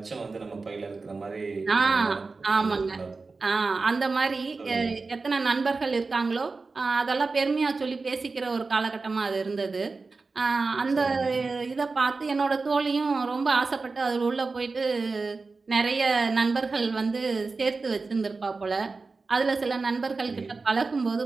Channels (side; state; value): left; quieter; 4.0 dB